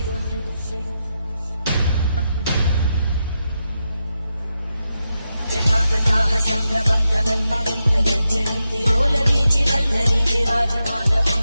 जटाकटाः सम्भ्रमब्धमन्मलिन्तगच्छन्ति रोलवीचि वल्लरी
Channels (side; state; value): both; inverted; correlation -0.87